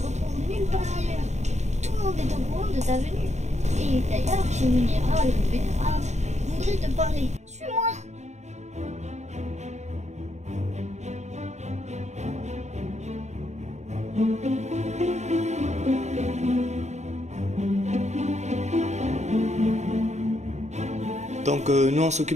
nulle part ailleurs. Tout le monde est au courant de ta venue. Et d'ailleurs, chez Munira, le vénérable, voudrait te parler. Suis-moi! Donc nous on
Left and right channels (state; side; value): late; left; 0.33 ms